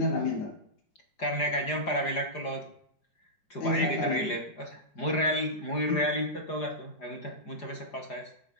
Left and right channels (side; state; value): right; late; 4.9 ms